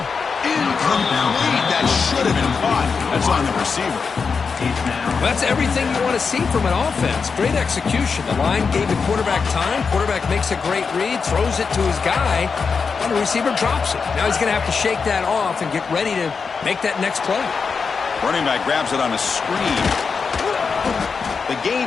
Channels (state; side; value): quieter; right; 5.3 dB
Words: Incomplete. That should have been caught. That's on the receiver. That's everything you want to see from an offense. Great execution. The line gave the quarterback time. Quarterback makes a great read, throws it to his guy, and the receiver drops it. Now he's going to have to shake that off and get ready to make that next play. Running back grabs it on a screen. The gain